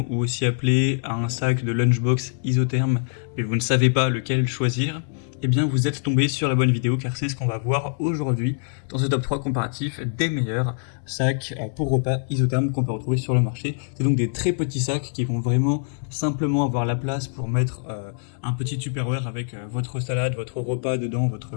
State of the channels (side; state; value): right; silent; 63 dB below the other